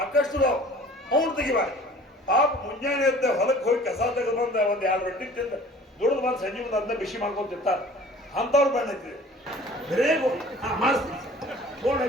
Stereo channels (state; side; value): normal; both; correlation 0.48